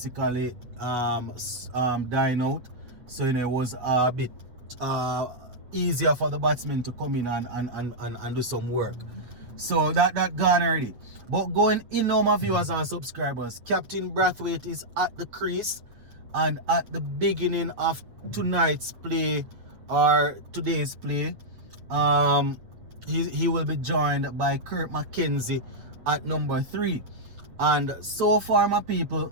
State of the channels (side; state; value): left; late; 8.3 ms